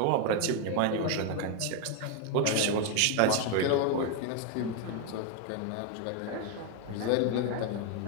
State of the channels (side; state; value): both; different; correlation 0.01